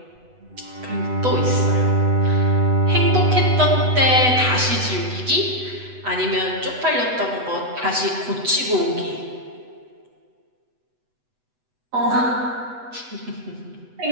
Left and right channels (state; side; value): late; left; 8.0 ms